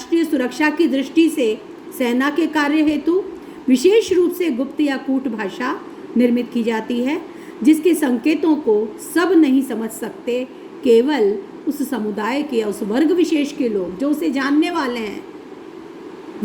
सुरक्षा की दृष्टि से सेना के कार्य हेतु विशेष रूप से गुप्त या कूट भाषा निर्मित की जाती है, जिसके संकेतों को सब नहीं समझ सकते, केवल उस समुदाय के या उस वर्ग विशेष के लोग जो उसे जानने वाले हैं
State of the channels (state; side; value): identical; both; correlation 1.00